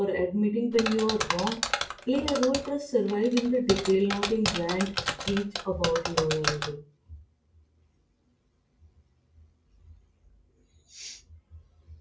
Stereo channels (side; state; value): both; identical; correlation 1.00